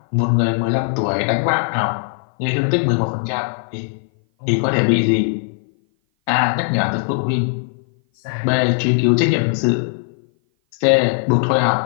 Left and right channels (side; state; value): right; silent; 57 dB below the other